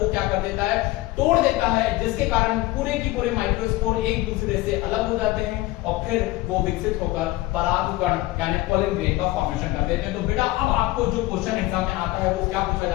क्या कर देता है? तोड़ देता है, जिसके कारण पूरे की पूरे माइक्रोस्पोर एक दूसरे से अलग हो जाते हैं और फिर वो विकसित होकर परागकण यानी पोलन ग्रेन का फॉर्मेशन कर देते हैं। तो बेटा अब आपको जो क्वेश्चन एग्जाम में आता है वो क्या पूछा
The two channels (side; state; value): right; quieter; 18.7 dB